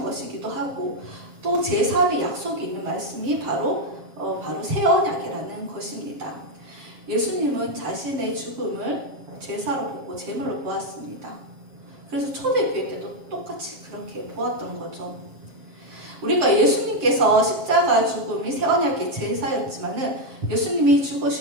것이기도 하고 또 제3의 약속이 있는 말씀이 바로 새 언약이라는 것입니다. 예수님은 자신의 죽음을 제사로 보고 제물로 보았습니다. 그래서 초대교회 때도 똑같이 그렇게 보았던 거죠. 우리가 예수님께서 십자가 죽음이 새 언약의 제사였지만은 예수님이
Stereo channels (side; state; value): left; late; 7.4 ms